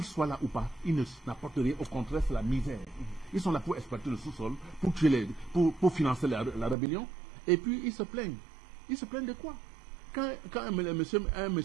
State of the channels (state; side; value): drops out; left; at 6.8 s